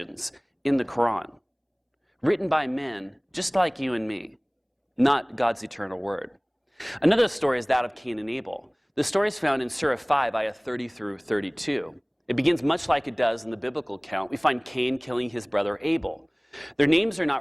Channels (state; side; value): identical; both; correlation 1.00